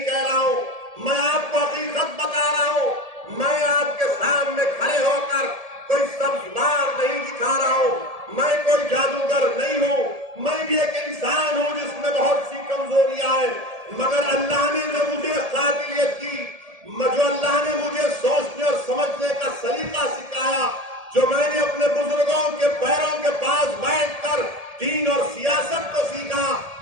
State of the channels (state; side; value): late; left; 1.7 ms